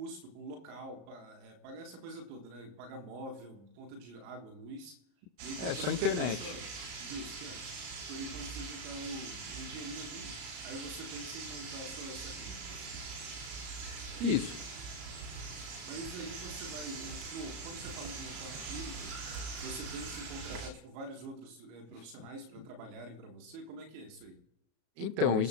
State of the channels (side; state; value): left; late; 34 ms